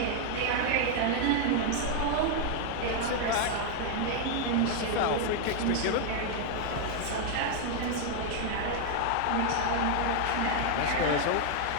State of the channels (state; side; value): different; both; correlation 0.00